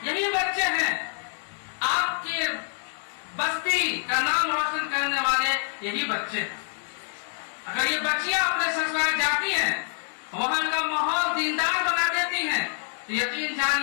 یہی بچے ہیں، آپ کے بستی کا نام روشن کرنے والے یہی بچے ہیں۔ اگر یہ بچیاں اپنے سسرال جاتی ہیں، وہاں کا ماحول دیندار بنا دیتی ہیں، تو یقین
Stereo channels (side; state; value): right; silent; 61 dB below the other